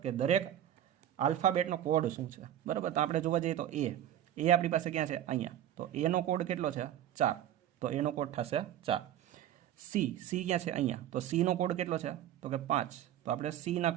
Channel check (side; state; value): left; quieter; 11.4 dB